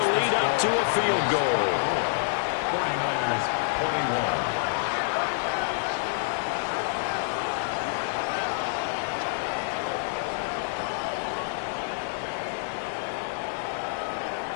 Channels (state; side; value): silent; right; digital silence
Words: lead up to a field goal. 49ers 21.